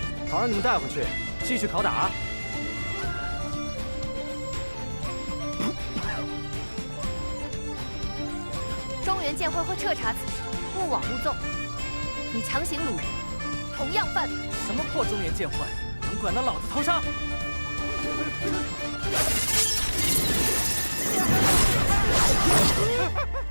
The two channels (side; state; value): both; inverted; correlation -1.00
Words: 好让你们带回去，继续拷打。中原剑会会彻查此事，勿枉勿纵。你强行掳人，同样犯法。什么破中原剑会，能管到老子头上？